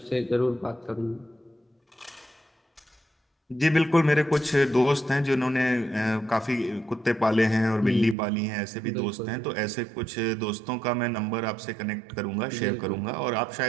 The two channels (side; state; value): left; drops out; at 8.2 s